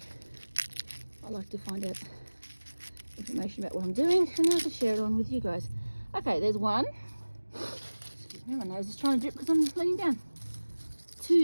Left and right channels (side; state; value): both; inverted; correlation -1.00